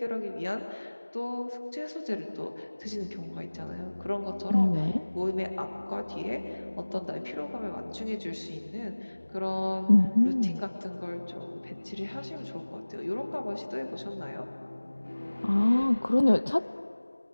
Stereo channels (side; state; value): both; inverted; correlation -1.00